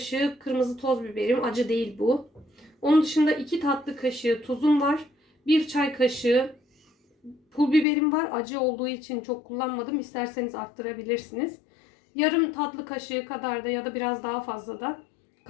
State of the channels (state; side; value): drops out; right; at 7.9 s